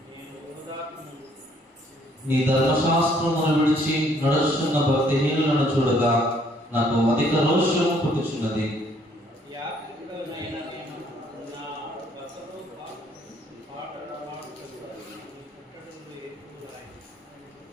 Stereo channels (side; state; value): both; normal; correlation 0.64